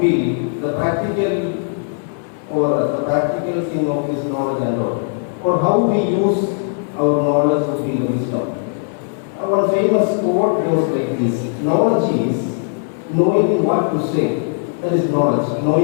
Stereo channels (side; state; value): right; silent; 67 dB below the other